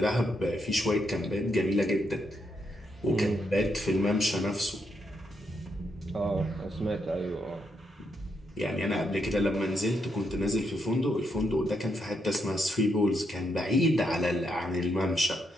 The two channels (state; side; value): normal; both; correlation 0.79